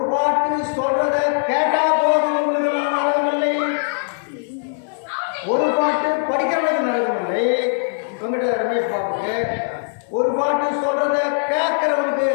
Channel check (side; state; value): right; silent; digital silence